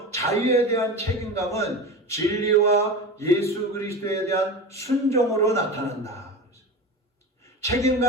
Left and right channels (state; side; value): normal; both; correlation 0.27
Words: 자유에 대한 책임감은 진리와 예수 그리스도에 대한 순종으로 나타난다.